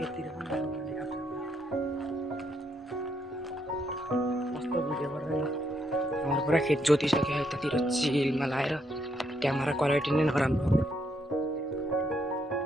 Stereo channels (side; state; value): both; normal; correlation 0.75